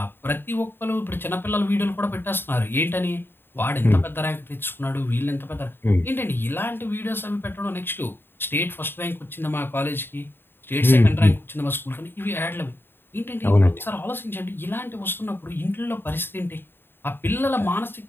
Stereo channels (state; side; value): late; right; 0.10 ms